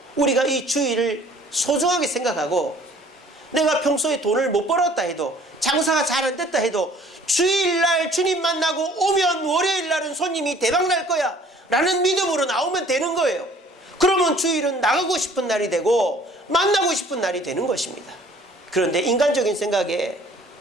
우리가 이 주일을 소중하게 생각하고, 내가 평소에 돈을 못 벌었다 해도, 장사가 잘 안 됐다 해도 주일날 주님 만나고 오면 월요일날은 손님이 대박날 거야 라는 믿음으로 나오면 되는 거예요. 그러면 주일은 나가고 싶은 날이 되고 만나고 싶은 날이 되는 것입니다. 그런데 인간적인 생각에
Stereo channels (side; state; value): both; normal; correlation 0.54